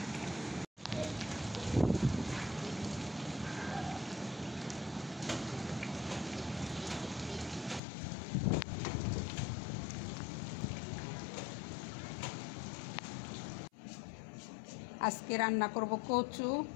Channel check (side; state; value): right; drops out; at 7.8 s